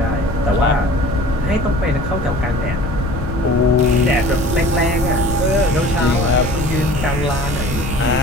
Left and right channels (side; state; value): left; noise; rumble, 6 dB below the sound